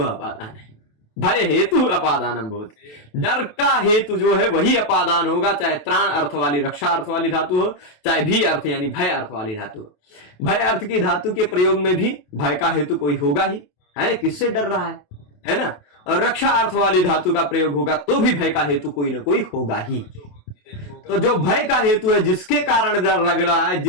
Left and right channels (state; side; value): late; right; 28 ms